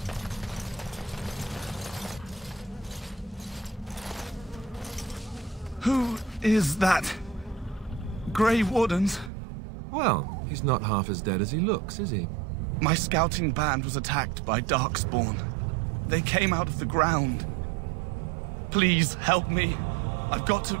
Who is that? Grey Wardens? Well, he's not half as dead as he looks, is he? My scouting band was attacked by Darkspawn. They came out of the ground. Please help me. I've got to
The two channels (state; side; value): drops out; left; at 9.3 s